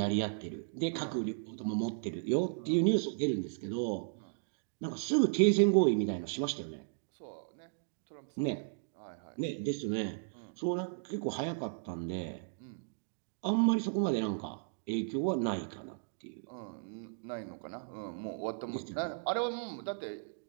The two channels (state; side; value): silent; left; digital silence